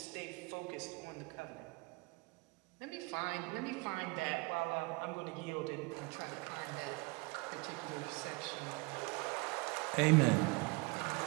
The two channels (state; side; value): quieter; left; 27.1 dB